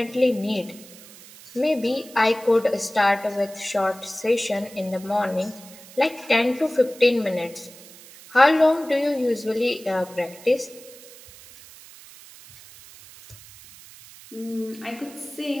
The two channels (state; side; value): noise; right; hiss, 20 dB below the sound